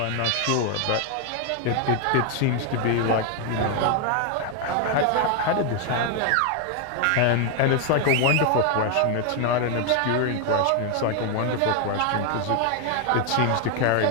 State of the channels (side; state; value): both; different; correlation 0.01